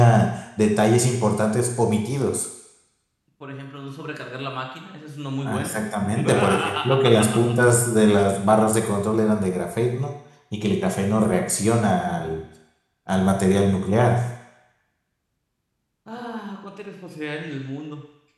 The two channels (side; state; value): both; identical; correlation 1.00